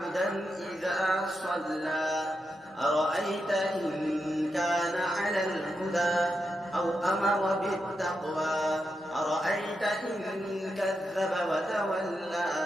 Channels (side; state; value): both; normal; correlation 0.86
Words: إذا صلى أرأيت إن كان على الهدى أو أمر بالتقوى أرأيت إن كذب وتولى